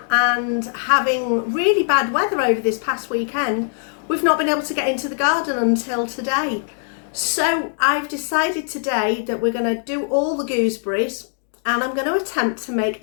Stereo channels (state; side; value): silent; right; digital silence